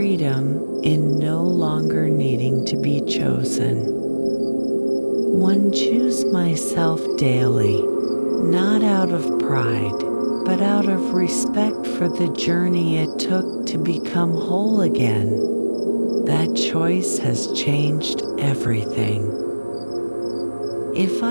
in no longer needing to be chosen. One choose myself daily, not out of pride, but out of respect for the journey it took to become whole again. That choice has changed everything. If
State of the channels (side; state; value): both; inverted; correlation -1.00